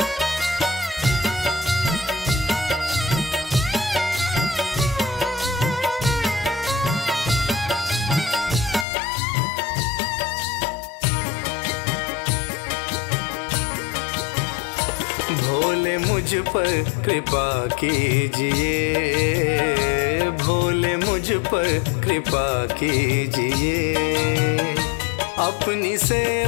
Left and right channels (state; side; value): drops out; right; at 8.8 s